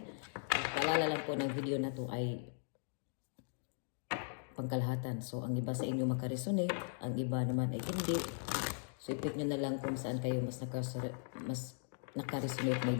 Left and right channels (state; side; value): silent; right; digital silence